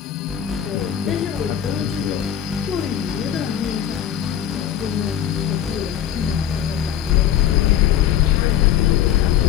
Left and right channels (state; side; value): quieter; right; 10.1 dB